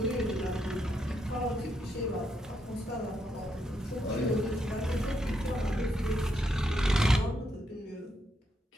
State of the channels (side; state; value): both; normal; correlation 0.79